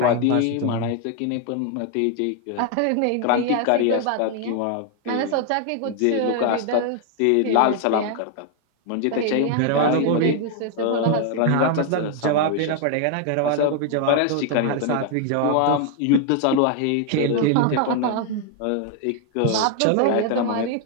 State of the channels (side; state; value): both; different; correlation 0.00